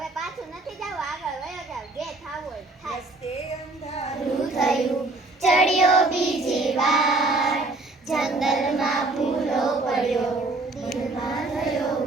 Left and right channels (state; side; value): quieter; left; 3.1 dB